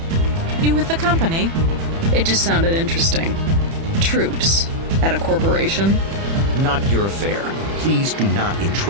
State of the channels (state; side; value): late; left; 30 ms